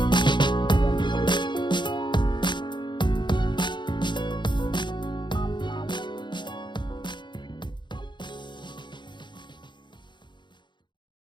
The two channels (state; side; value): late; right; 0.22 ms